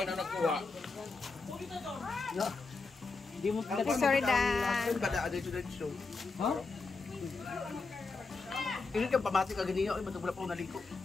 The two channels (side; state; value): right; quieter; 4.0 dB